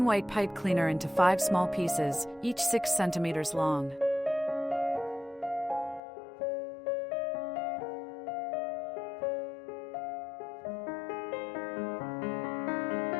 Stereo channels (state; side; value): drops out; right; at 6.0 s